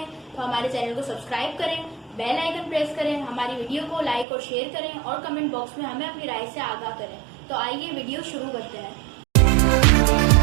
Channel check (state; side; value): drops out; left; at 4.2 s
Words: तो हमारे चैनल को सब्सक्राइब करें, बेल आइकन प्रेस करें, हमारी वीडियो को लाइक और शेयर करें और कमेंट बॉक्स में हमें अपनी राय से आगाह करें। तो आइए वीडियो शुरू करते हैं।